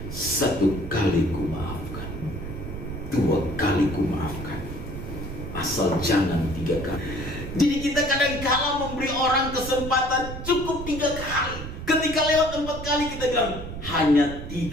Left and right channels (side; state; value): right; noise; rumble, 9 dB below the sound